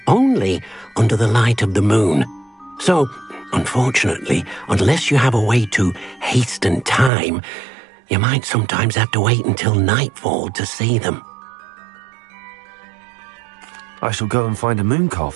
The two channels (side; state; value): left; drops out; at 7.1 s